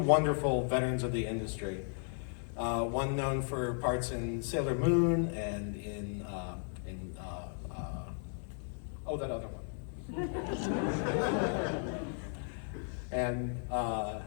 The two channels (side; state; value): right; silent; 54 dB below the other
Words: veterans of the industry. One known for parts in Sailor Moon and in that other one. And